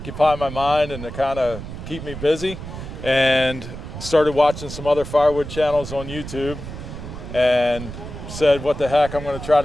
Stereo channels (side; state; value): right; noise; rumble, 10 dB below the sound